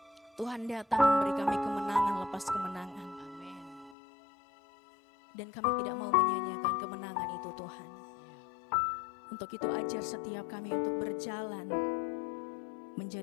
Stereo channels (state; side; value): drops out; right; at 4.0 s